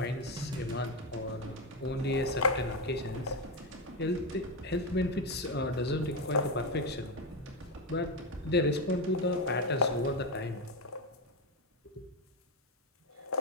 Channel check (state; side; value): normal; both; correlation 0.10